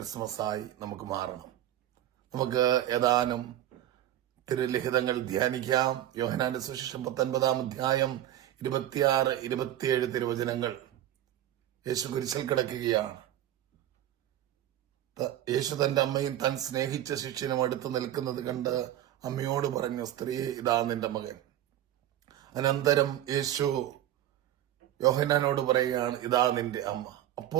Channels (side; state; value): left; quieter; 12.5 dB